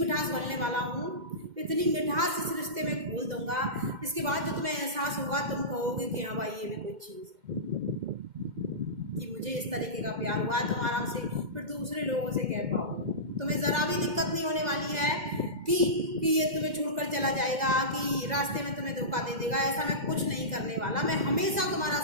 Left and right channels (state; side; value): late; left; 2.0 ms